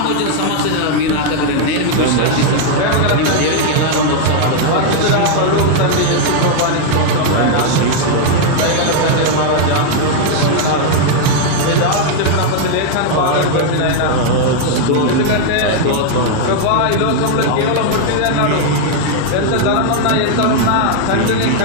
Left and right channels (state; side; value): different; both; correlation 0.00